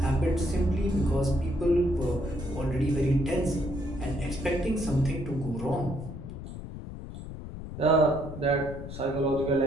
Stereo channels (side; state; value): left; noise; rumble, 10 dB below the sound